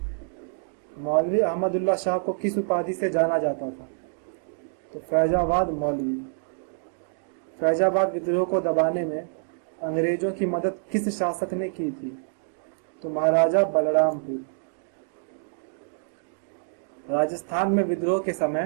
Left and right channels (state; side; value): silent; left; digital silence